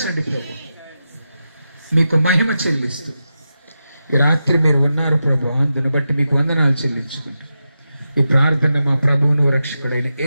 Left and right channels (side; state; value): both; inverted; correlation -0.90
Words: ప్రభు. మీకు మహిమ చెల్లిస్తూ ఈ రాత్రి మీరు ఉన్నారు ప్రభు, అందుని బట్టి మీకు వందనాలు చెల్లించుకుంటూ ఈ ప్రార్థన మా ప్రభువును రక్షకుడైన